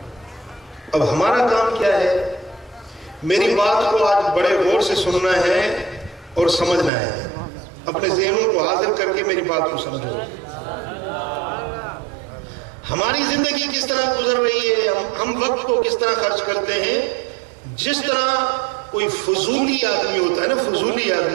اب ہمارا کام کیا ہے؟ میری بات کو آج بڑے غور سے سننا ہے اور سمجھنا ہے، اپنے ذہنوں کو حاضر کر کے میری بات کو سمجھو۔ ہماری زندگی کس طرح گزر رہی ہے، ہم وقت کو کس طرح خرچ کرتے ہیں؟ جس طرح کوئی فضولی آدمی ہوتا ہے نا، فضولی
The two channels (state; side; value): drops out; left; at 6.9 s